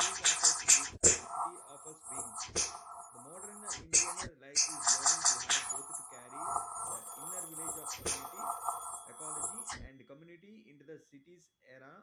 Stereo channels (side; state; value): both; identical; correlation 1.00